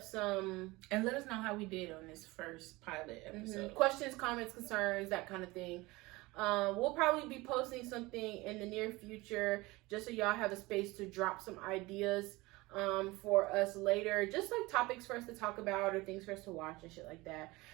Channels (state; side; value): quieter; left; 21.7 dB